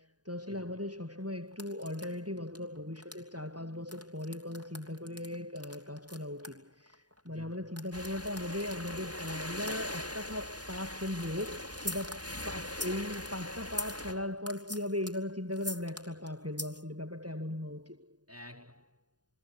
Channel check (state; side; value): late; left; 0.69 ms